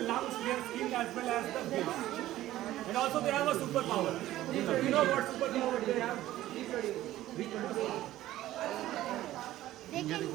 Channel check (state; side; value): quieter; left; 14.7 dB